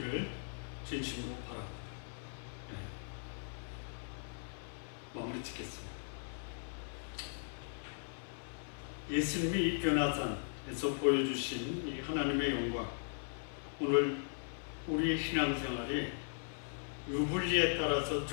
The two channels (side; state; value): right; silent; 52 dB below the other